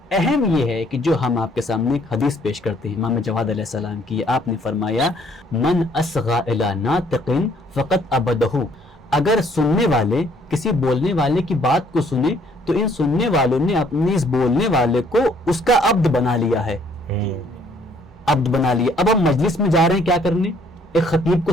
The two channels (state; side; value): normal; both; correlation 0.63